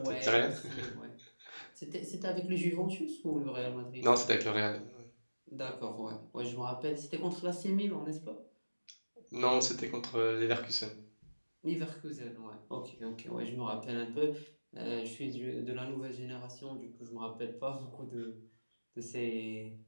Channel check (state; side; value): inverted; both; correlation -1.00